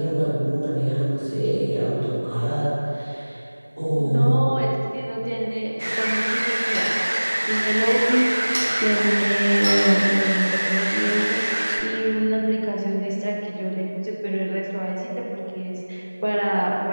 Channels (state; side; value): inverted; both; correlation -1.00